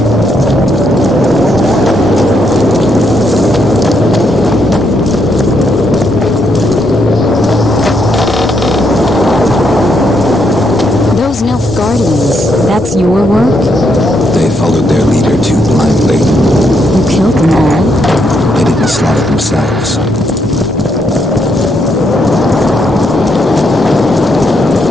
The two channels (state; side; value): normal; both; correlation 0.77